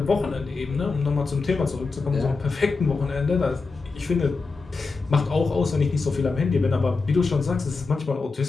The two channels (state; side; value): quieter; right; 4.2 dB